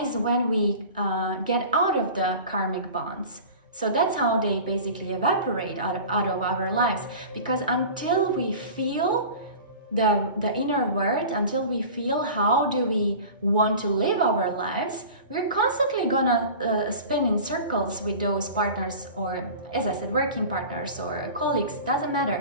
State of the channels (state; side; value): inverted; both; correlation -0.38